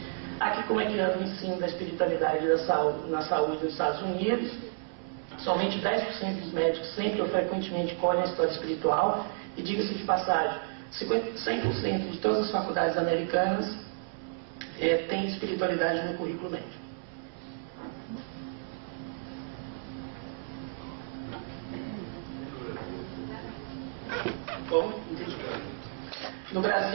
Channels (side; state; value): left; silent; 57 dB below the other